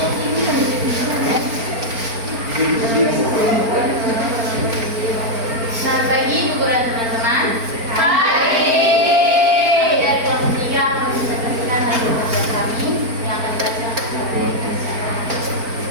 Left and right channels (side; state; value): left; late; 4.4 ms